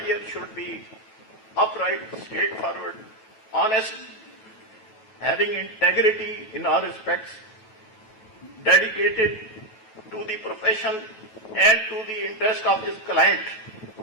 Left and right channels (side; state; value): right; late; 9.2 ms